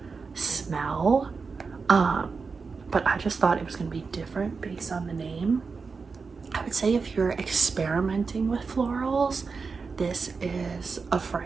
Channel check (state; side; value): quieter; left; 4.8 dB